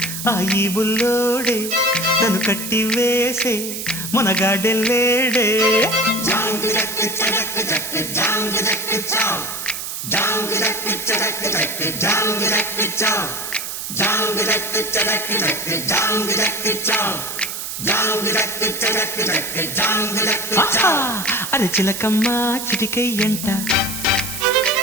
ఆ ఈ బుల్లోడే నన్ను కట్టి వేసే మునగాడెల్లేడే. అరే చిలకమ్మ చిటికయ్యంట,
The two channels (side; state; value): right; noise; hiss, 6 dB below the sound